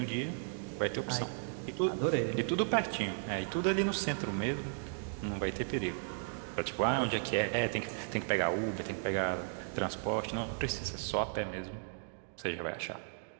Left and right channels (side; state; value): left; silent; digital silence